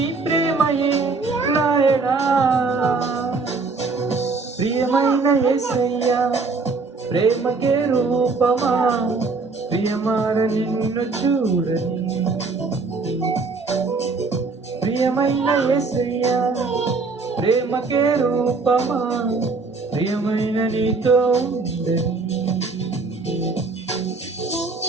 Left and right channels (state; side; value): quieter; left; 4.1 dB